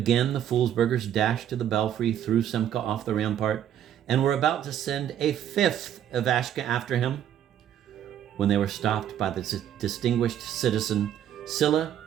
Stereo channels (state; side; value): quieter; left; 10.4 dB